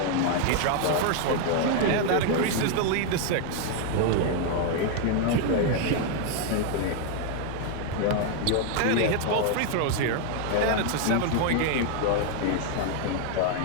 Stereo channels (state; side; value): different; both; correlation 0.01